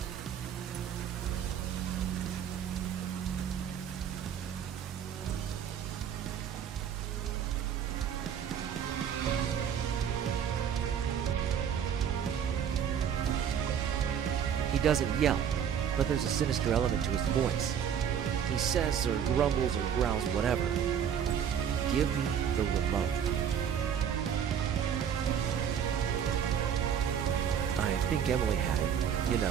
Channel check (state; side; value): quieter; left; 8.4 dB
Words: He doesn't yell, but there's a sinister element to his voice. He says or grumbles or growls whatever. Give me the remote. I think Emily had it.